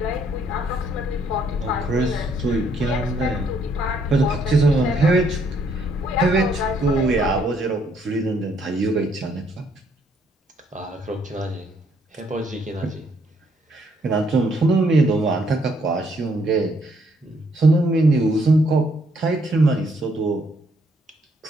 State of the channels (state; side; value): normal; both; correlation 0.69